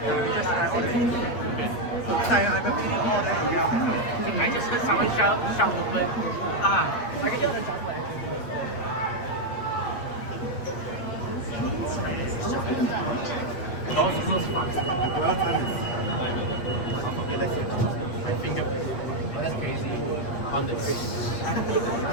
I just heard someone shout the word. I can hear the chocolate. Doors close fast. The dwell time is okay, let's see. My fingerprint. Oh, that's crazy. On the fish.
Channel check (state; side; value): late; right; 8.4 ms